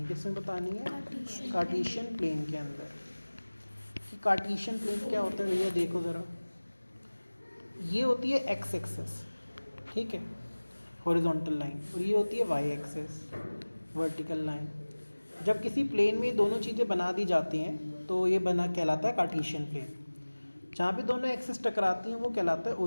किसमें बतानी है? कार्टेशियन प्लेन के अंदर। कार्टेशियन प्लेन क्या होता है भैया, देखो ज़रा, ये होती है एक्स एक्सिस, ठीक है, हॉरिजॉन्टल लाइन, और ये होती है वाई एक्सिस, वर्टिकल लाइन। जब किसी प्लेन में दोनों चीज़ें बना दी जाती हैं तो ये बना कहलाता है कार्टेशियन प्लेन। जहाँ पे दोनों एक्सिस टकराती हैं वो कहलाता है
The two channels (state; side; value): inverted; both; correlation -1.00